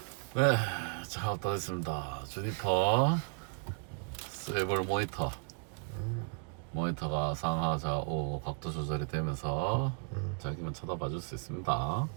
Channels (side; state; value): left; quieter; 39.5 dB